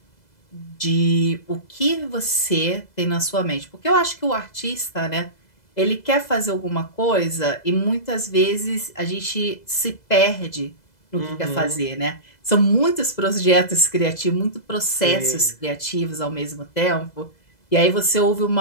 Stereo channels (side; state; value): right; late; 2.0 ms